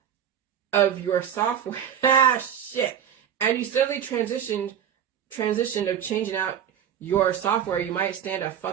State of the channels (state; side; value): quieter; left; 9.2 dB